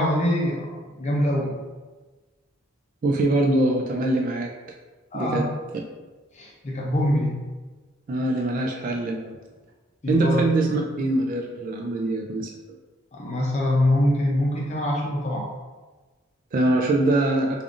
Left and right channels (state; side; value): normal; both; correlation 0.70